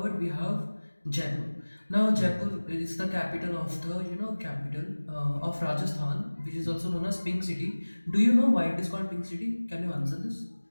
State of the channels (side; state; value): both; inverted; correlation -1.00